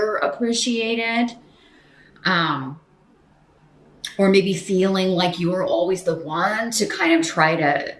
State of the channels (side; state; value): both; identical; correlation 1.00